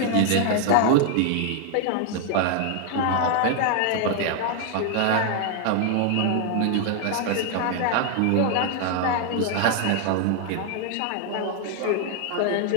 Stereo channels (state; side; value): different; both; correlation 0.00